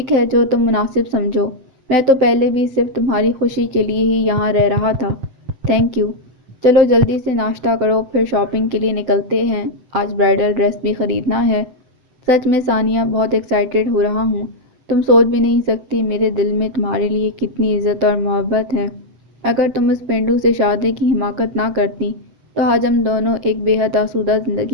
ہے، جو تم مناسب سمجھو۔ میں تو پہلے بھی صرف تمہاری خوشی کے لیے ہی یہاں رہ رہا تھا۔ Thank you. چلو جلدی سے ناشتہ کرو پھر شاپنگ کے لیے نکلتے ہیں، آج برائڈل ڈریس بھی خریدنا ہے۔ سچ میں ثانیہ بہت ایکسائٹیڈ ہو رہا ہوں۔ تم سوچ بھی نہیں سکتی میرے دل میں تمہارے لیے کتنی عزت اور محبت ہے۔ اگر تم اس پینڈو سے شادی کی حماقت نہ کرتی تو آج ہم دونوں ایک بے حد آسودہ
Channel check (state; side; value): late; left; 7.8 ms